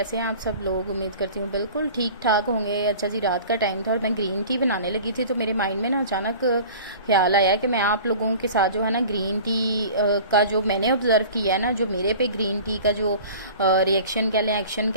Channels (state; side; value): inverted; both; correlation -0.42